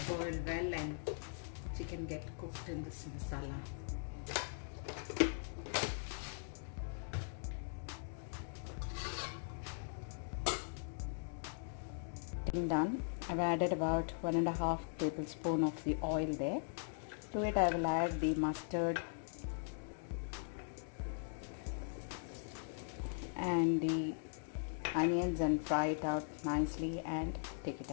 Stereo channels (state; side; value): silent; right; digital silence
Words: boil well and chicken get cooked in this masala. Done. I've added about 1.5 tablespoon of the oil there. To it I will add the mustard and the onions and fry it out nicely and take it